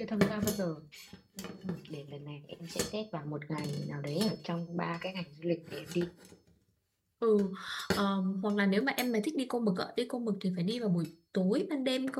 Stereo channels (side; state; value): both; identical; correlation 1.00